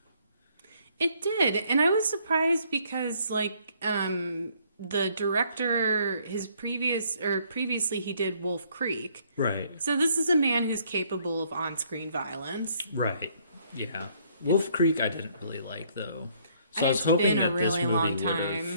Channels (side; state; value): both; inverted; correlation -0.65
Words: It did. And I was surprised because, the director, previously he did Wolf Creek. Right. So this is a man who's capable of on-screen violence. Right. Yeah. Wolf Creek I didn't really like, though. So I was hoping that this movie would